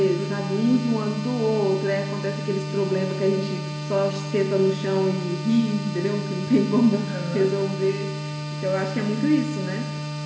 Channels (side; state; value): both; identical; correlation 1.00